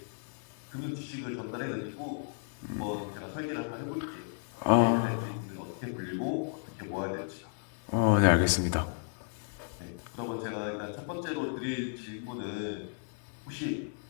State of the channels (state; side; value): silent; right; digital silence